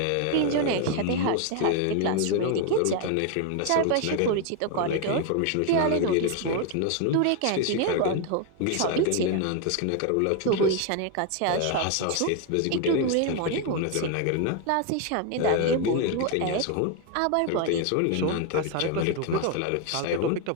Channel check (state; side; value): different; both; correlation 0.01